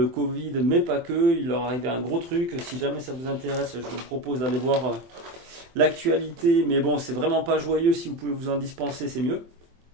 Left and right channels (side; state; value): left; late; 24 ms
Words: Covid, mais pas que. Il leur arrivait un gros truc. Si jamais ça vous intéresse, je vous propose d'aller voir l'actualité. Mais bon, c'est vraiment pas joyeux. Si vous pouvez vous en dispenser, c'est mieux.